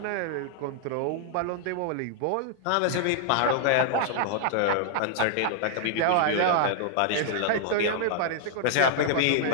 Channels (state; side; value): different; both; correlation -0.01